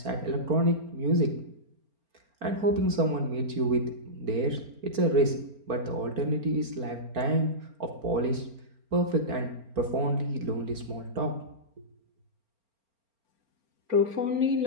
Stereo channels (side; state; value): left; late; 4.4 ms